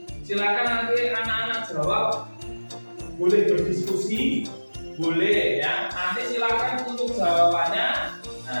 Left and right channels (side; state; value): both; inverted; correlation -1.00